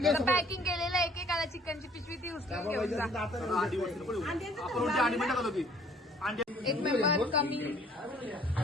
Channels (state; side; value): normal; both; correlation 0.58